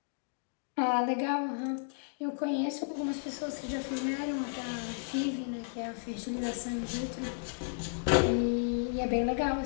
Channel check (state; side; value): silent; right; digital silence